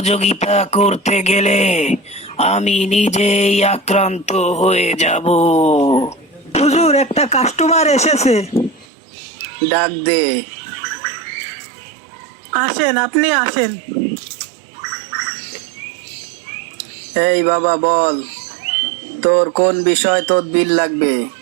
করতে গেলে আমি নিজেই আক্রান্ত হয়ে যাব। হুজুর, একটা কাস্টমার এসেছে। ডাক দে। আসেন, আপনি আসেন। এই বাবা, বল, তোর কোন বিষয় তদবির লাগবে?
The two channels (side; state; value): left; drops out; at 8.8 s